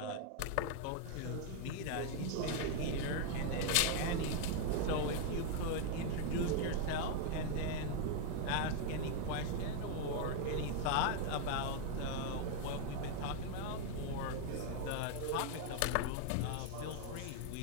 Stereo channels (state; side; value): different; both; correlation 0.00